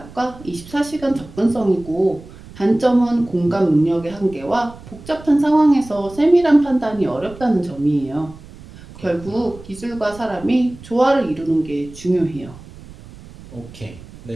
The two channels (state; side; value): noise; right; rumble, 18 dB below the sound